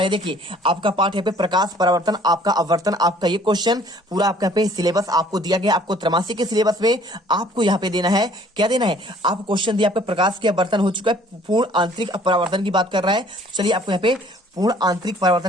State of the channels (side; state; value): both; normal; correlation 0.56